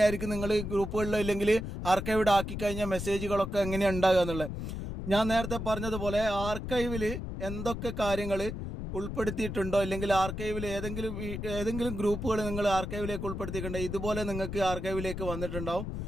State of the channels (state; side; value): noise; left; rumble, 6 dB below the sound